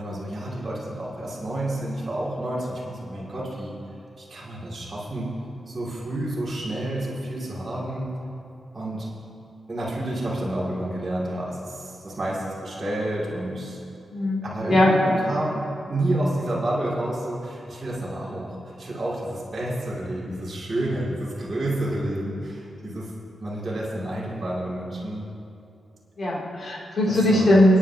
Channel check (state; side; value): normal; both; correlation 0.85